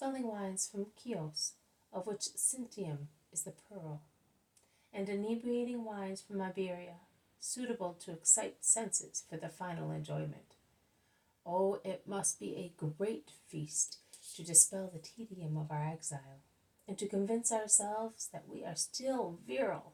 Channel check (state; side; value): identical; both; correlation 1.00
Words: wines from Chios, of which Sintium is the pearl, and inebriating wines from Iberia, suitable to excite senses for the final enjoyment. Oh, it must be a great feast to dispel the tedium of our exile, and to convince ourselves that we are still virile.